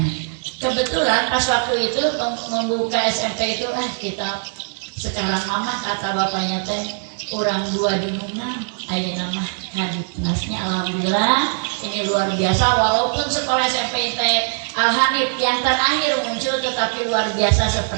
Kebetulan pas waktu itu membuka SMP itu kita sekarang mama kata bapaknya teh orang 2 dimunang ayeuna mah kadipnasnya. Alhamdulillah ini luar biasa, walaupun sekolah SMP Al-Hanif yang terakhir muncul tetapi luar biasa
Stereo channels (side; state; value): left; silent; digital silence